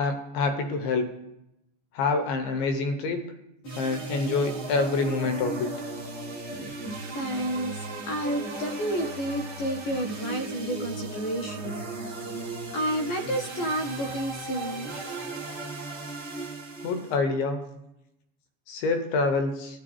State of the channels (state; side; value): late; right; 14 ms